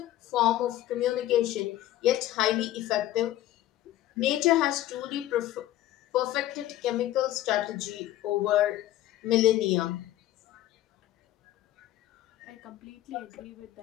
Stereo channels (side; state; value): right; quieter; 14.0 dB